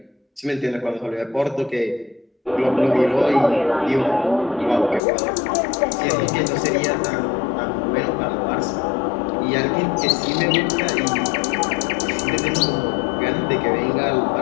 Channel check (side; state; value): right; drops out; at 5.0 s